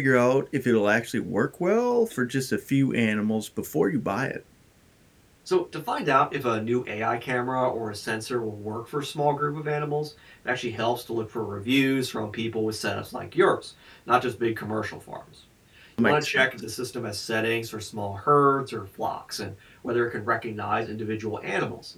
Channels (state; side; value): identical; both; correlation 1.00